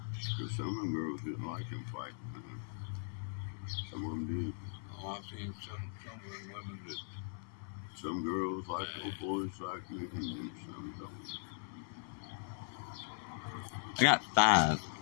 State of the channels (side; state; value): right; silent; 52 dB below the other